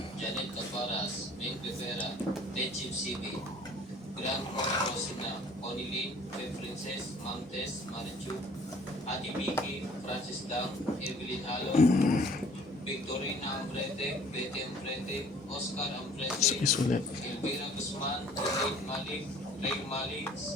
Janet Caparas, Ming Rivera, Tejim CB, Grand Rosina, Onilin, Princess, Montes, Marichu, Adi Vicky, Francis Dang, Evelyn Halo, Victorina Ambrete, Betty Ambrete, Oscar Ambrete, Sais ulit. Elvira Guzman, Elaine Malik, Ray Malik,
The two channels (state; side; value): normal; both; correlation 0.53